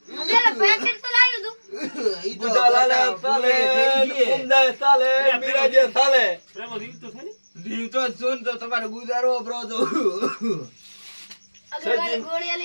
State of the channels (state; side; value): inverted; both; correlation -1.00